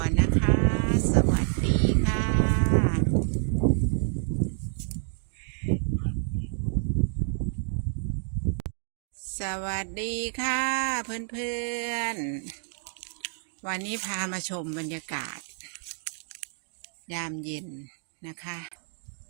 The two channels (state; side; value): silent; left; 59 dB below the other